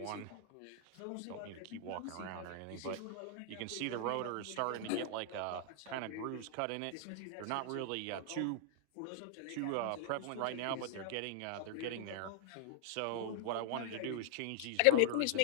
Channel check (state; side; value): different; both; correlation 0.00